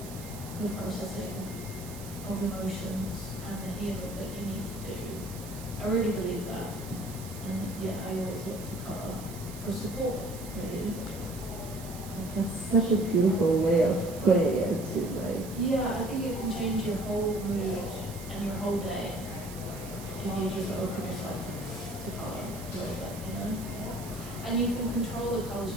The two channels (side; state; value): right; noise; hiss, 15 dB below the sound